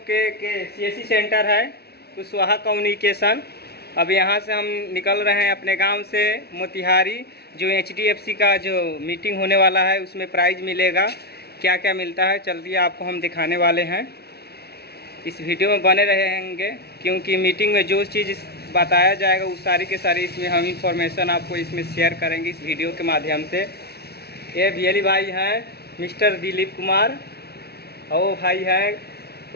के सीएससी सेंटर है कुशवाहा कम्युनिकेशन। अब यहां से हम निकल रहे हैं अपने गांव से मोतिहारी। जो एचडीएफसी का जो मीटिंग होने वाला है उसमें प्राइज़ मिलेगा। क्या क्या मिलता है चलिए आपको हम दिखाने वाले हैं। इस वीडियो में बने रहेंगे क्योंकि मीटिंग में जो चीज़ बताया जाएगा वो सारी के सारी इसमें हम इंफॉर्मेशन आपको इसमें शेयर करेंगे इस वीडियो के माध्यम से। ये बियली भाई हैं मिस्टर दिलीप कुमार, और वो भाई हैं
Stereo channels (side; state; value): right; late; 0.47 ms